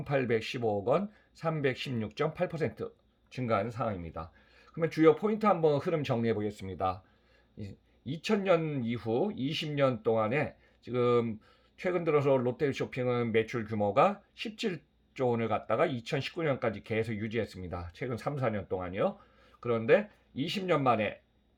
원, 316.8% 증가한 상황입니다. 그러면 주요 포인트 한번 흐름 정리해 보겠습니다. 2000년 이후 20년 동안에 지금 최근 들어서 롯데쇼핑은 매출 규모가 17조 원을 갖다가 2019년까지 계속 유지했습니다. 최근 3, 4년 동안이요. 그런데 20년 만에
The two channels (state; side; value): identical; both; correlation 1.00